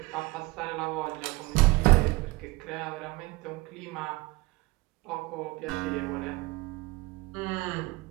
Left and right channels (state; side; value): quieter; left; 22.5 dB